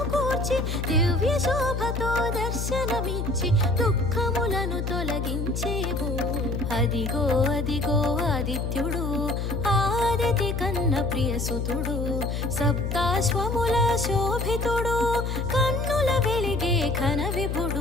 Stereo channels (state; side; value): noise; left; hum, 2 dB below the sound